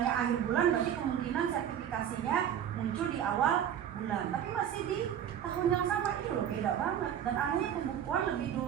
akhir bulan berarti kemungkinan sertifikasinya muncul di awal bulan. Tapi masih di tahun yang sama, itu loh beda banget. Dan anehnya pembukuan lebih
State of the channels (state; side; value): quieter; left; 9.6 dB